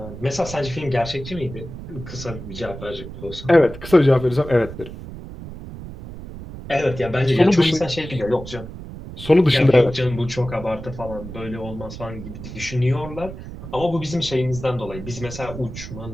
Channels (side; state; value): right; noise; rumble, 12 dB below the sound